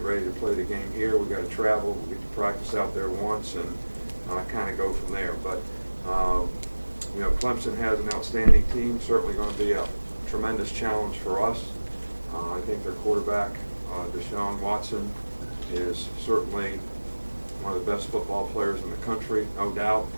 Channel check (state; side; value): inverted; both; correlation -1.00